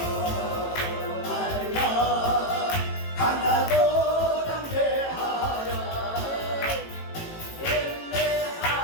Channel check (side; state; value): right; late; 18 ms